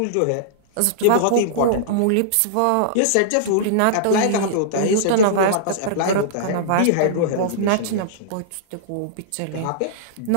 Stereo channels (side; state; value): both; different; correlation -0.02